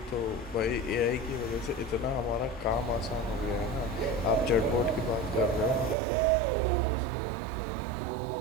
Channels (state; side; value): drops out; left; at 6.0 s